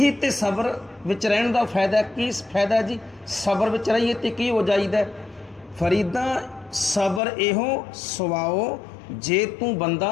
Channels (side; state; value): right; drops out; at 7.2 s